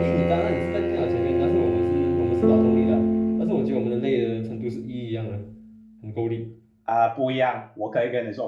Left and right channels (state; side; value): identical; both; correlation 1.00